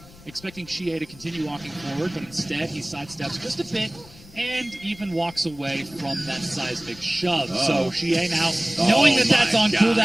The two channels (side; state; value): left; noise; rumble, 21 dB below the sound